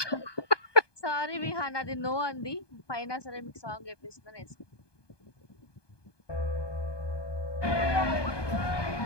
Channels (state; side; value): late; right; 1.2 ms